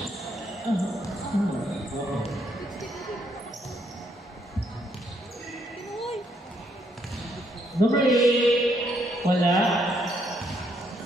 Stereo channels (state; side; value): normal; both; correlation 0.73